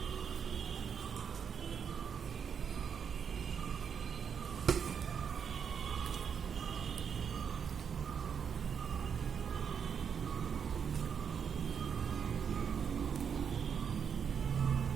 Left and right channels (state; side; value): quieter; left; 7.1 dB